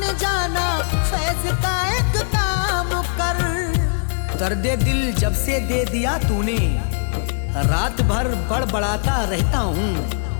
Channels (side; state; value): right; silent; digital silence